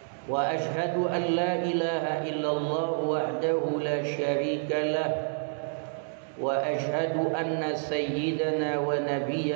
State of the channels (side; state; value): left; silent; digital silence